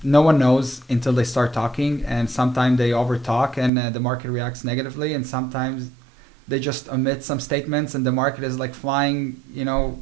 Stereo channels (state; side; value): drops out; left; at 3.7 s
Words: no one knows until they start talking, and sometimes they over talk and the market reacts negatively, and sometimes they just omit some statements and the market is like flying,